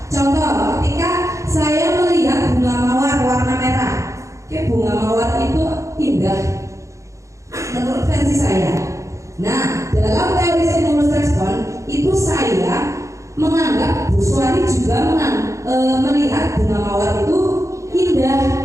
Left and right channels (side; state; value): left; late; 0.15 ms